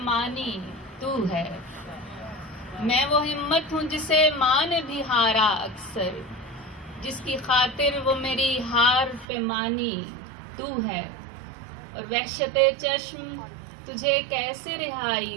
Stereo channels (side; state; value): left; drops out; at 9.2 s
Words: مانی تو ہے، میں وہ ہمت ہوں جسے ماں نے بھی ہارا اکثر، جس کی خاطر وہ میری ہار پہ مانی تو ہے، اور وحشت چشم تجھے کیسے رہائی